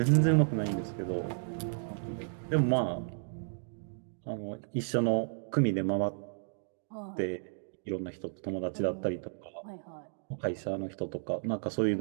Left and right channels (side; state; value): left; silent; digital silence